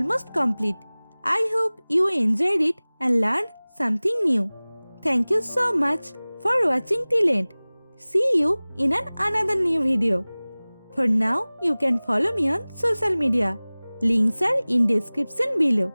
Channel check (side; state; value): both; inverted; correlation -1.00